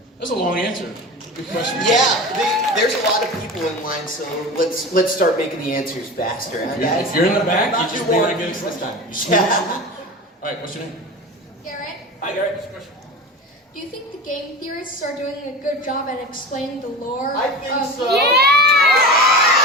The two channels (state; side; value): normal; both; correlation 0.31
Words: That's a long answer. Good question. Yeah, there's a lot of people in line, so let's start making the answers faster, huh, guys? If you're in the back, you just want to get it this time. Yeah. All right, what's your name? Garrett, Hi, Garrett. What's your question? do you think the game theorists are doing a good job at explaining the lore? I think of so.